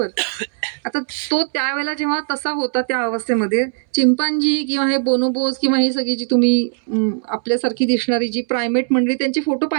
आता तो त्यावेळेला जेव्हा तसा होता त्या अवस्थेमध्ये चिंपांजी किंवा हे बोनोबोस किंवा ही सगळी जी तुम्ही आपल्यासारखी दिसणारी जी प्रायमेट मंडळी त्यांचे फोटो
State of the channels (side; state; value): left; silent; 67 dB below the other